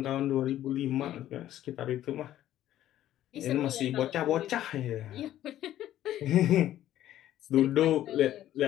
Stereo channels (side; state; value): right; quieter; 12.8 dB